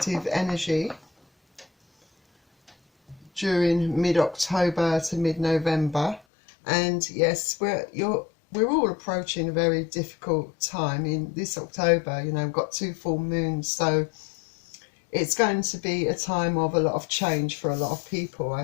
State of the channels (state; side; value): drops out; right; at 6.2 s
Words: energy during mid-October to mid-November. And yes, we're all approaching a very difficult time in this October. You know, we've got 2 full moons, so it's going to be a time of a lot of change for a lot of people, I